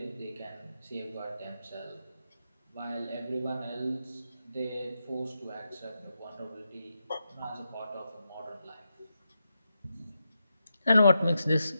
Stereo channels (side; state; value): both; inverted; correlation -0.86